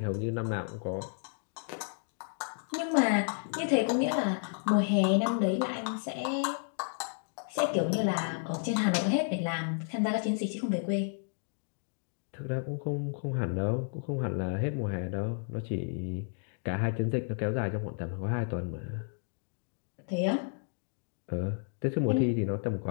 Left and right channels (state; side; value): silent; right; 56 dB below the other